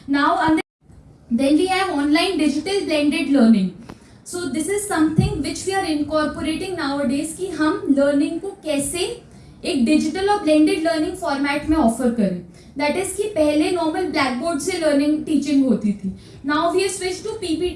Now then we have online digital blended learning. So this is something which we are incorporating nowadays कि हम लर्निंग को कैसे एक डिजिटल और ब्लेंडेड लर्निंग फॉर्मेट में ऑफर करें. दैट इज कि पहले नॉर्मल ब्लैक बोर्ड से लर्निंग टीचिंग होती थी. Now we have switch to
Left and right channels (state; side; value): identical; both; correlation 1.00